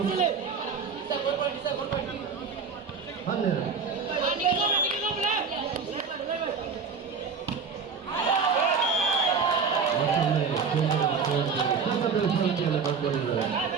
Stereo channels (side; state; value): left; quieter; 5.5 dB